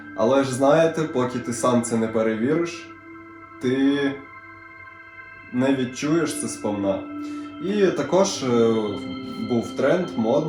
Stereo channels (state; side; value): identical; both; correlation 1.00